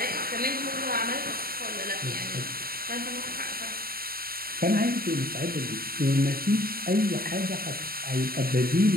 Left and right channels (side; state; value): left; late; 0.43 ms